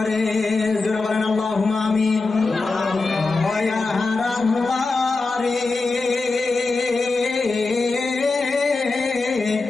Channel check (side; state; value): right; quieter; 3.7 dB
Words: রে। যারা বলেন আল্লাহুম্মা আমিন। দয়ার আল্লাহ রে